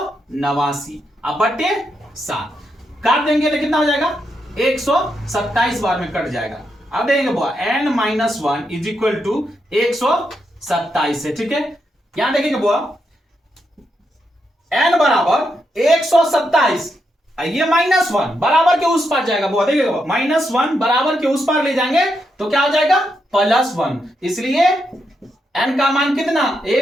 अब बट्टे 7 काट देंगे तो कितना हो जाएगा 127 बार में कट जाएगा। अब देंगे बुआ n minus 1 is equal to 127 है। ठीक है, यहां देखेंगे बुआ एन बराबर 127, ये माइनस 1 बराबर के उस पार जाएगा बुआ, देखिएगा माइनस 1 बराबर के उस पार ले जाएंगे तो क्या हो जाएगा प्लस 1, इसलिए एन का मान कितना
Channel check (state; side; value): normal; both; correlation 0.82